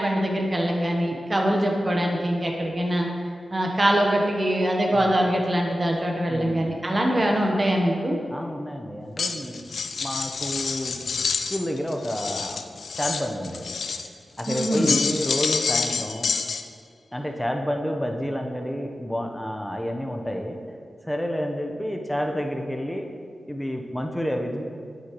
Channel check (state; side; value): normal; both; correlation 0.93